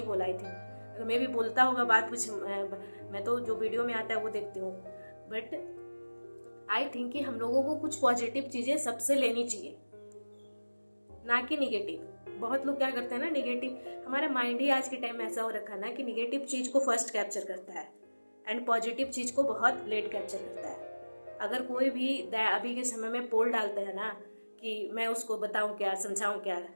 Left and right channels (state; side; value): inverted; both; correlation -1.00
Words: बोला। आई थिंक अगर मैं भी बोलता होगा बात कुछ, मैं तो जो वीडियो में आता है वो देखती हूँ, बट आई थिंक कि हम लोगों को कुछ पॉजिटिव चीजें सबसे लेनी चाहिए। ना कि निगेटिव। बहुत लोग क्या करते हैं ना, निगेटिव, हमारा माइंड ही आज के टाइम में ऐसा हो रखा है ना कि निगेटिव चीज़ को फर्स्ट कैप्चर करता है एंड पॉजिटिव चीज़ को बहुत लेट कैप्चर करता है। अगर कोई भी अभी के समय में पोल डालते हैं ना कि मैं उसको बताऊं क्या, समझाऊं क्या,